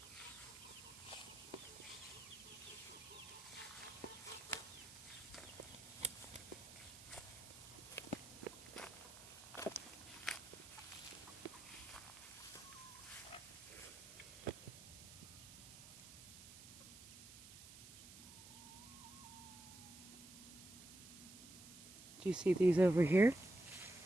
Do you see these over here?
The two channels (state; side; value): noise; right; hiss, 15 dB below the sound